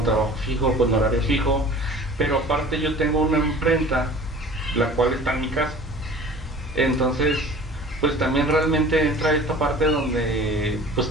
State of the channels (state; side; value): normal; both; correlation 0.44